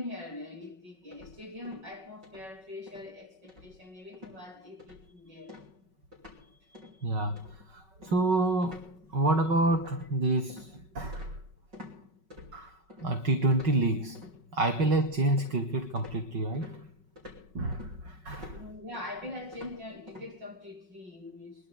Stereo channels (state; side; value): late; left; 5.3 ms